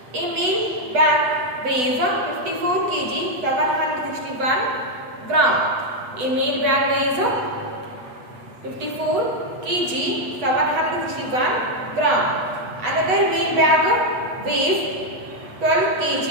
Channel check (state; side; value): late; left; 8.1 ms